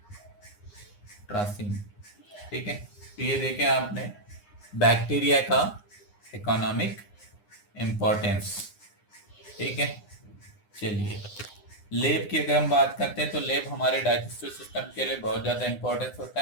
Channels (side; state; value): right; late; 9.7 ms